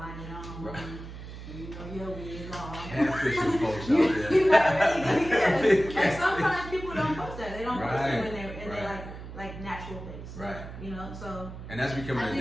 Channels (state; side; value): noise; right; hum, 12 dB below the sound